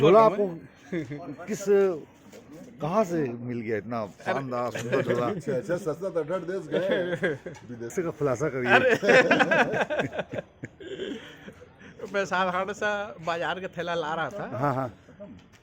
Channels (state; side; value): identical; both; correlation 1.00